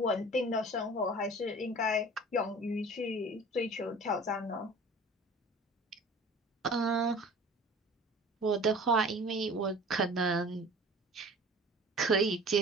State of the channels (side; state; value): both; normal; correlation 0.43